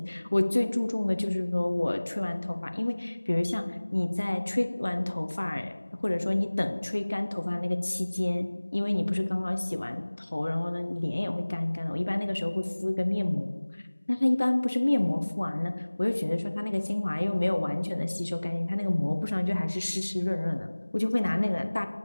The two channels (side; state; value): both; inverted; correlation -1.00